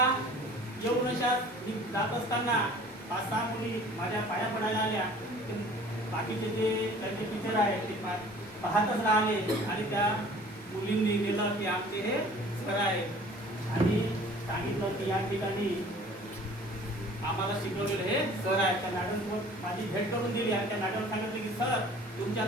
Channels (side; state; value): both; normal; correlation 0.49